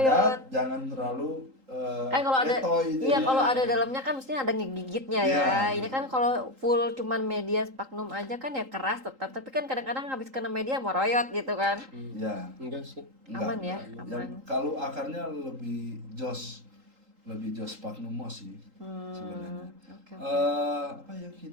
padat, jangan terlalu Kan kalau ada letoy iya jadinya. kalau ada dalamnya kan mestinya ada ngegigitnya ya. Iya. Ini kan kalau full cuman media sphagnum aja kan ya keras tetap, tapi kan kadang-kadang habis kena media moroyot gitu kan. Ya. Enggak sih. Aman ya, Yang aman. kalau akarnya lebih jos sphagnum moss sih sebenarnya. Oke. Apa yang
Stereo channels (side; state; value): left; late; 3.8 ms